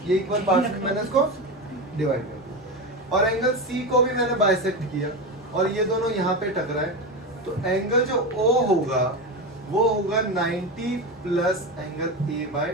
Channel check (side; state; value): both; normal; correlation 0.19